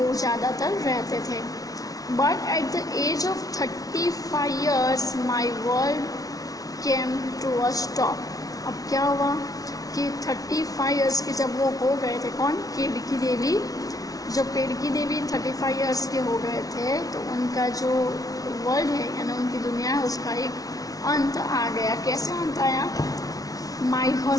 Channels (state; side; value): late; right; 0.18 ms